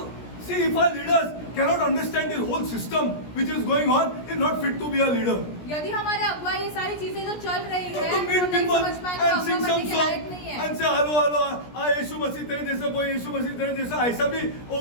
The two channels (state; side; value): late; right; 17 ms